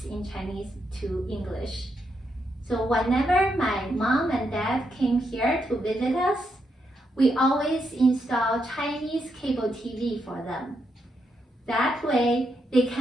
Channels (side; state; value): both; normal; correlation 0.80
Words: in Chinese to English. So whenever my mom and dad came here to visit us, we always install Chinese cable TV for them. That way, they